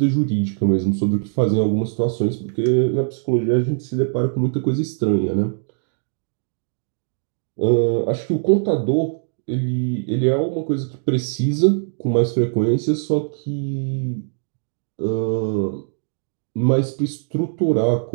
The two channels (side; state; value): left; silent; digital silence